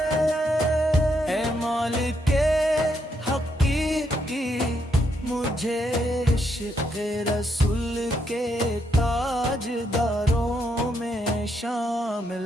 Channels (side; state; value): both; normal; correlation 0.77